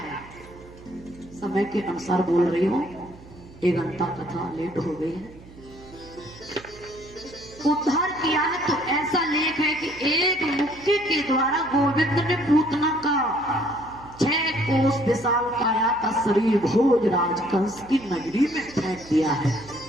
समय के अनुसार बोल रही हूं, 1 घंटा कथा लेट हो गई है। उद्धार किया है तो ऐसा लेख है कि एक मुक्के के द्वारा गोविंद ने पूतना का 6 कोस विशाल काया का शरीर भोजराज कंस की नगरी में फेंक दिया है,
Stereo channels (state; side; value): noise; right; hum, 20 dB below the sound